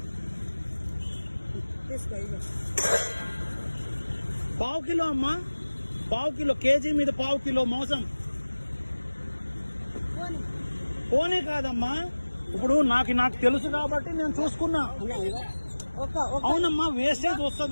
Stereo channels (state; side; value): inverted; both; correlation -1.00